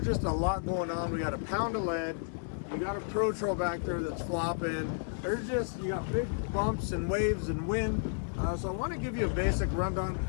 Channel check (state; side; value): silent; right; digital silence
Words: just a lot going on. We got a pound of lead, you got a pro troll back there that's flopping. You got big bumps and waves and wind. So I want to give you a basic rundown